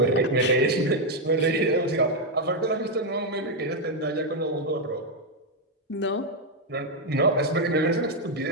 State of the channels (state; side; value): normal; both; correlation 0.01